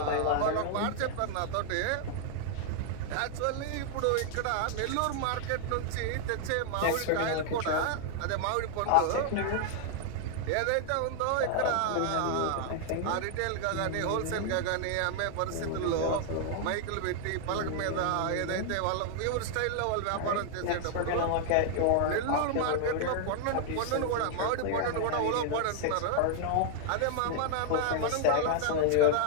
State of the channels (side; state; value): both; different; correlation 0.00